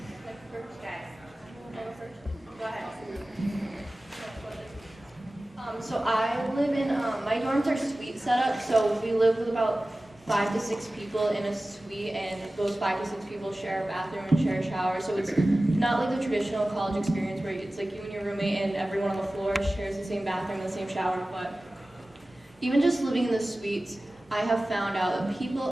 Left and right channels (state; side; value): normal; both; correlation 0.97